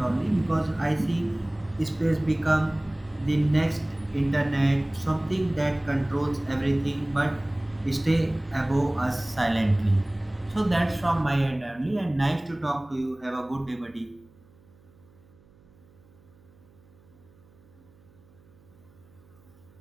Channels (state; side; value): noise; right; hum, 28 dB below the sound